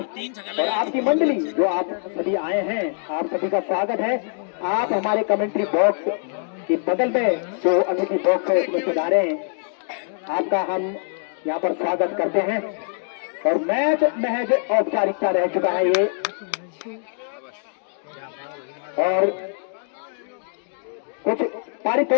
और आपकी मंडली जो आप सभी आए हैं, आप सभी का स्वागत है। आप हमारे कमेंट्री बॉक्स के बगल में जो अतिथि बॉक्स है उसमें सुधारे, आपका हम यहाँ पर स्वागत करते हैं। और मैच महज औपचारिकता रह चुका है ये। और कुछ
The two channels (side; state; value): right; silent; digital silence